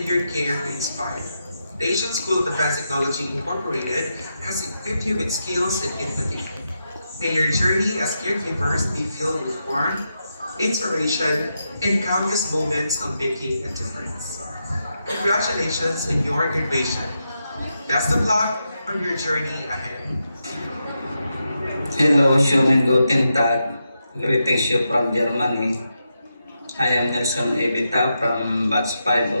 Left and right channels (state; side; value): inverted; both; correlation -0.86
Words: your care to inspire. The Asian School of Advanced Technology Incorporated has equipped you with skills and empathy. May your journey as caregivers be filled with warmth, inspiration, and countless moments of making a difference. Congratulations on your graduation. Best of luck on your journey ahead. Hello, schönen guten Tag. Greetings you from Germany. I am Nelson Evita from Batch 5